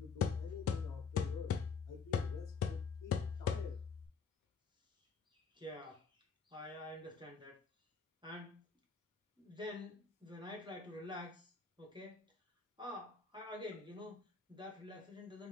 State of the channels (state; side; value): quieter; right; 5.4 dB